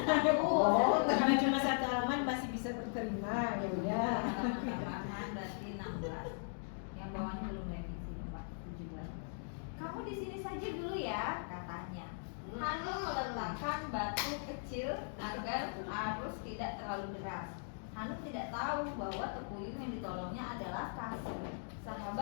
Oh, karena cuma satu halaman masih bisa terterima, ya udah. Halaman tambahan di sini saja dulu ya, katanya. Hanum meletakkan batu kecil agar arus tidak terlalu deras. Hanum tidak tahu bahwa Tekuyung yang ditolongnya adalah Kasih,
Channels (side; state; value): right; silent; digital silence